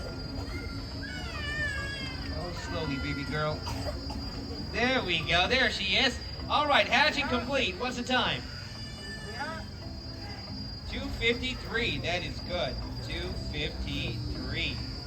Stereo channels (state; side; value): identical; both; correlation 1.00